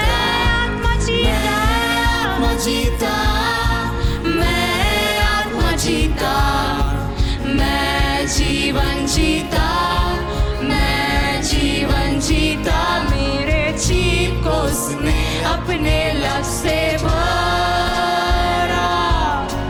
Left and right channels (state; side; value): identical; both; correlation 1.00